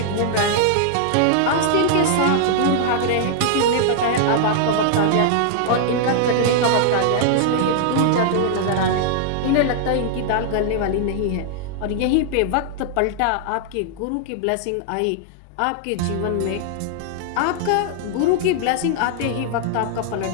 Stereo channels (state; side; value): different; both; correlation -0.01